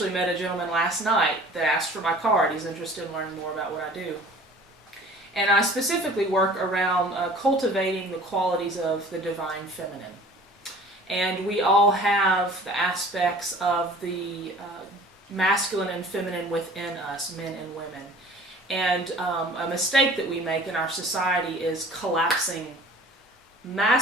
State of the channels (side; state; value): both; normal; correlation 0.47